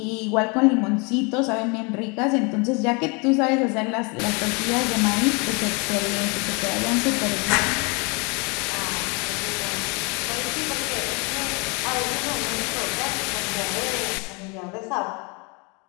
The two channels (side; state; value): right; quieter; 31.1 dB